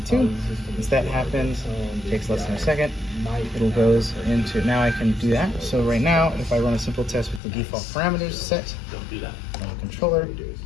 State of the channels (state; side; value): drops out; right; at 7.4 s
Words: Once that happens, it takes less than a second. It goes into, now I can do that. So right now, if I run a simple test with the default parameters set on the controller,